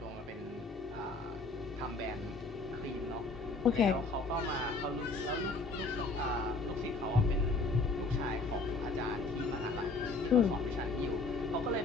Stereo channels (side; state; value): right; quieter; 3.5 dB